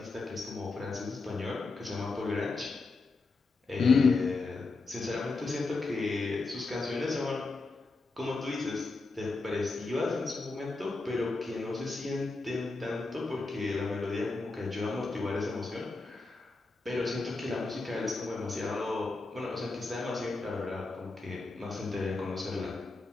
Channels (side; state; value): right; quieter; 3.6 dB